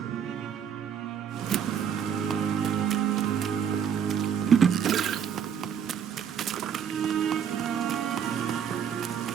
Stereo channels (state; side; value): quieter; left; 8.0 dB